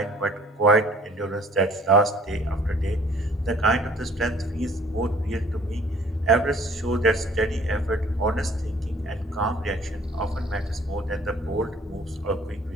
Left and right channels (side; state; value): both; normal; correlation 0.55